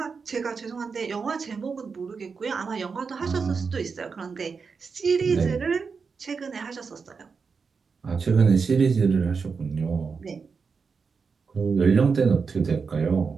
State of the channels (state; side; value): quieter; left; 5.3 dB